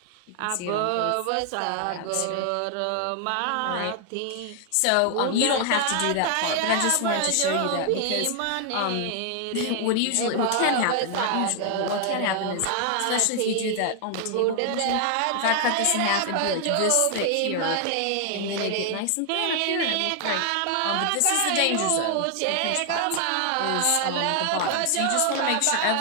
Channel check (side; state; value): both; different; correlation 0.00